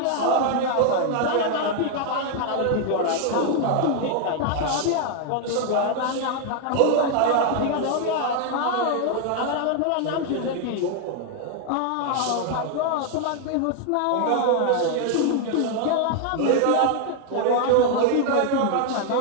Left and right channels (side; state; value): both; different; correlation 0.00